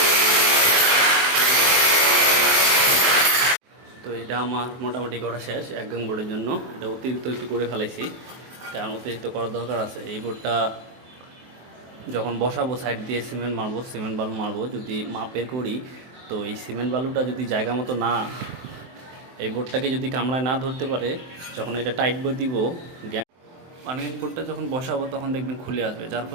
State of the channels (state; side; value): late; left; 23 ms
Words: তো এটা আমার মোটামুটি করা শেষ এক গাং বোর্ডের জন্য। এটা অতিরিক্ত একটু করে ফেলাইছি, কারণ অতিরিক্ত করার দরকার আছে। এই বোর্ডটা যখন বসাবো সাইড দিয়ে সিমেন্ট বালু মারবো, যদি মাপের করি, তো এই সিমেন্ট বালুটা যদি জায়গা মতো না, এই বোর্ডটাকে যদি কামড়ায় না ধরতে পারে, যখন এটা টাইট করে দিব, পানিং বোর্ডটা যখন বসাবো তখন দেখবেন খুলে আসবে। যার